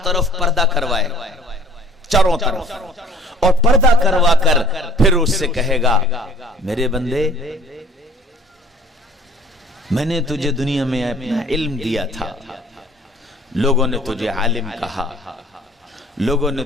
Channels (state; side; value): normal; both; correlation 0.50